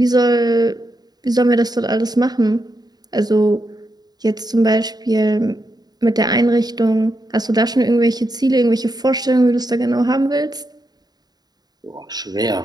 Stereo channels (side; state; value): left; late; 0.19 ms